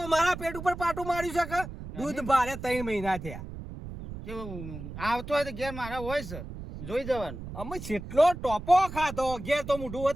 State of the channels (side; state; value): right; noise; rumble, 10 dB below the sound